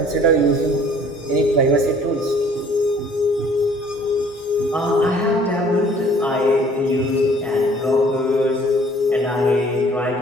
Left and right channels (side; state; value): both; normal; correlation 0.56